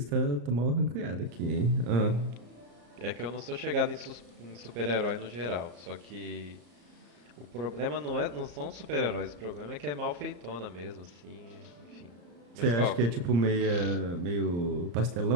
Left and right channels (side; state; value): left; late; 34 ms